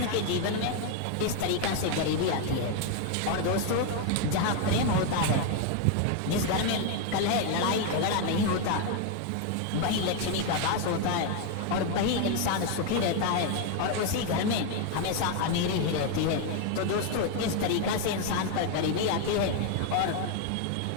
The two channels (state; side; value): different; both; correlation 0.01